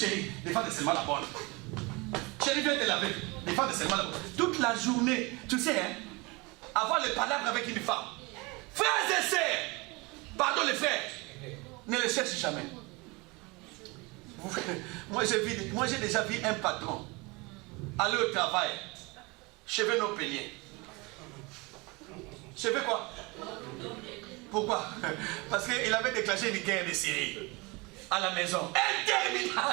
défends seulement la bonne. Chérie, viens te laver, défends seulement la bonne. Toute la journée, tu sais, hein, avoir le palabre avec une femme. Frères et sœurs, pardon les frères, ne les cherche jamais. Moi j'ai déjà vu un patron aller au travail, cheveux non peignés. Cheveux quoi? Pourquoi? Parce qu'il avait déclenché une guerre de Syrie à la maison.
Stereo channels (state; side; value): quieter; left; 26.0 dB